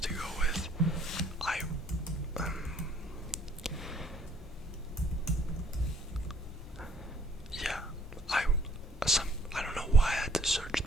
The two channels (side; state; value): both; normal; correlation 0.62